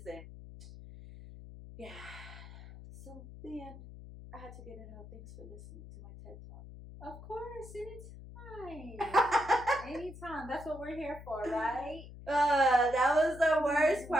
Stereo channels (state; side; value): noise; left; hum, 15 dB below the sound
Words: And yeah. So, the end. I had to get it out. Thanks for listening to my TED Talk. Of course. Anytime. Anytime. That's what we're here for, right? That was the worst